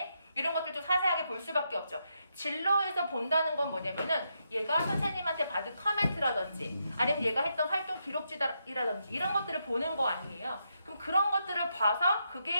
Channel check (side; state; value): both; inverted; correlation -0.82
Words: 이런 것들도 자세하게 볼 수밖에 없죠. 진로에서 본다는 건 뭐냐면은 얘가 선생님한테 받은 커멘트라든지 아니면 얘가 했던 활동 기록지라든지 이런 것들을 보는 거 아니에요. 그럼 그런 것들을 봐서